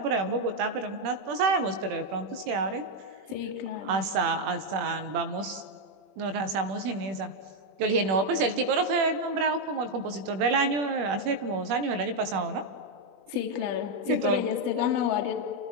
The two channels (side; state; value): left; late; 21 ms